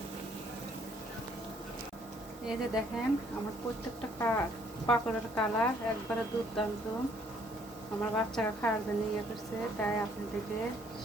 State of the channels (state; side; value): normal; both; correlation 0.64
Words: এই যে দেখেন আমার প্রত্যেকটা পাকোড়ার কালার একবারে দুর্দান্ত আমার বাচ্চারা খাওয়ার জন্য ইয়ে করছে তাই আপনাদেরকে